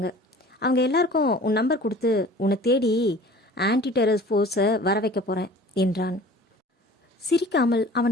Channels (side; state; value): both; normal; correlation 0.45